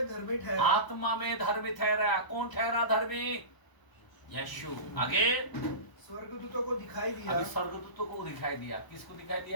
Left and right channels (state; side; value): late; right; 1.0 ms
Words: धर्मी ठहरा। आत्मा में धर्मी ठहरा। कौन ठहरा धर्मी? यीशु। आगे, स्वर्गदूतों को दिखाई दिया। अभी स्वर्गदूतों को दिखाई दिया। किसको दिखाई